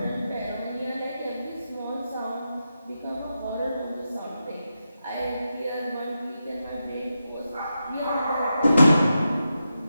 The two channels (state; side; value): inverted; both; correlation -0.88